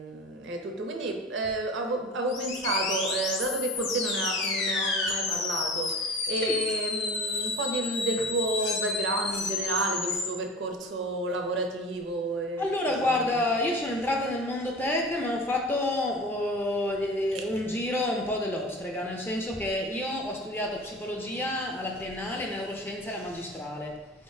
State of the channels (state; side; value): normal; both; correlation 0.36